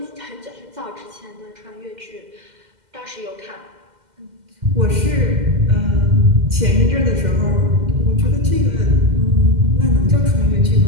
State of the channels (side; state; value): left; late; 2.1 ms